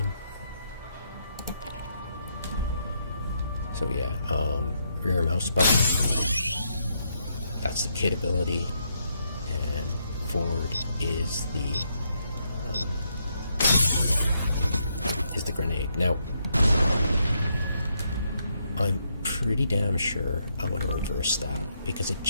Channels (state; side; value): inverted; both; correlation -0.77